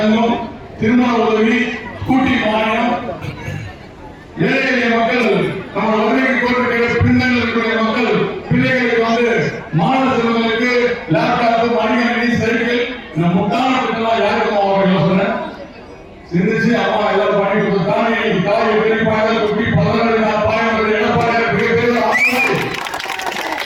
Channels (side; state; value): both; identical; correlation 1.00